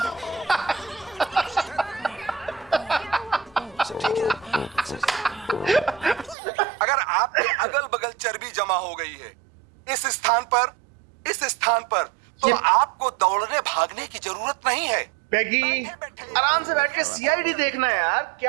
अगर आपके अगल बगल चर्बी जमा हो गई है इस स्थान पर, तो आपको दौड़ने भागने की जरूरत नहीं है। पैगी, आराम से बैठ के सीआईडी देखना है यार,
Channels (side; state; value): left; drops out; at 6.4 s